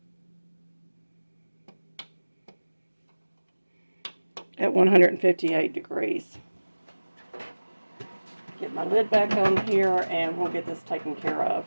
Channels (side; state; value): both; inverted; correlation -1.00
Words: At 158 degrees. Get my lid back on here and we'll get this taken care of.